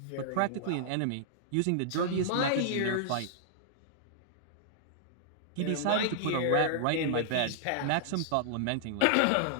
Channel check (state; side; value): different; both; correlation -0.01